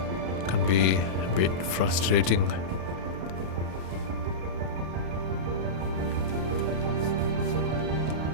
can be a bit frustrating.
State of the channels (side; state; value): left; late; 32 ms